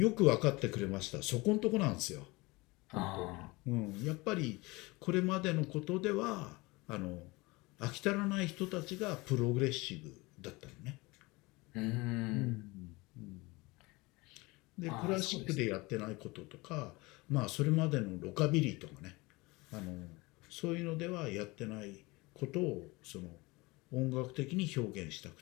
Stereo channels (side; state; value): right; quieter; 23.5 dB